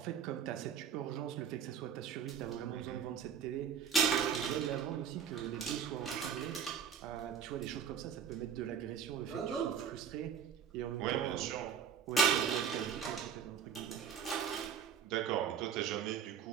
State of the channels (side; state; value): left; quieter; 7.6 dB